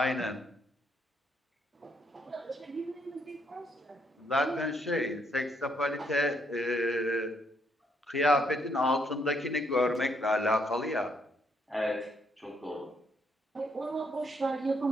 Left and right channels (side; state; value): both; normal; correlation 0.73